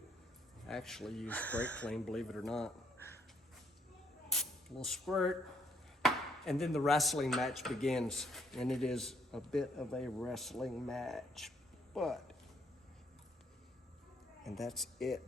I actually use Brakleen, believe it or not. A little squirt, and then the wrestling match begins. And it is a bit of a wrestling match, and that's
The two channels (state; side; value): normal; both; correlation 0.69